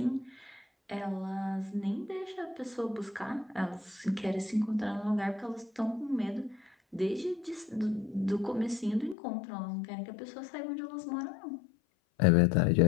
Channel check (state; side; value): drops out; right; at 9.2 s